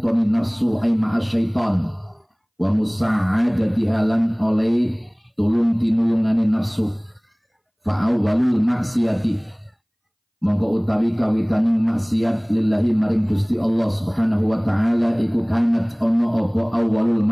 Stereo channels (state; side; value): identical; both; correlation 1.00